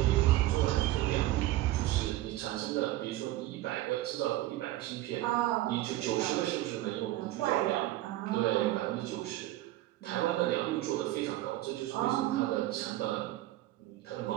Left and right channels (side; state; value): left; quieter; 16.0 dB